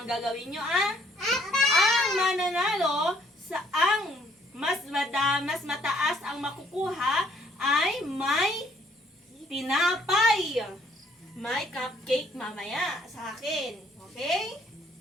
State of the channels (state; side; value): normal; both; correlation 0.64